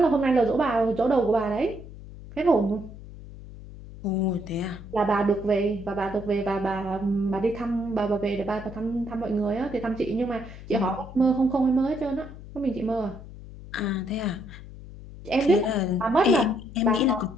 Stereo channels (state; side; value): noise; left; hum, 15 dB below the sound